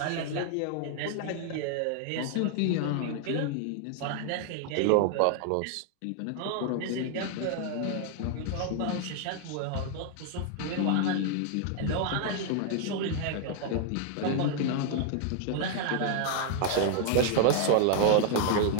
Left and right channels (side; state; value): both; different; correlation 0.00